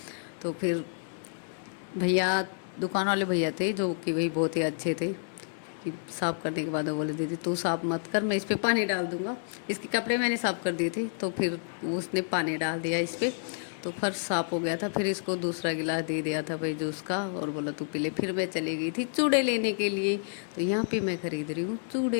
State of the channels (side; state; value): right; silent; digital silence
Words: तो फिर भैया, दुकान वाले भैया थे जो कि भाई बहुत ही अच्छे थे, कि साफ़ करने के बाद वो बोले दीदी तू साफ़ मत कर, मैं इस पर पानी डाल दूंगा। इसके कपड़े मैंने साफ़ कर दिए थे, तो फिर उसने पानी डाल दिया इस पर, तो फर्श साफ़ हो गया था। फिर इसको दूसरा गिलास दे दिया था भाई जूस का, और बोला तू पी ले। फिर मैं चली गई थी चूड़े लेने के लिए। तो यहाँ पे मैं खरीद रही हूँ